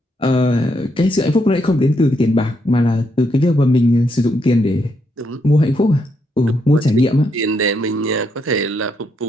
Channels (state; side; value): normal; both; correlation 0.77